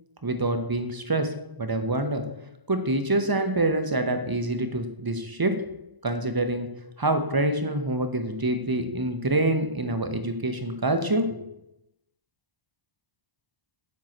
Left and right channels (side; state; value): left; late; 1.0 ms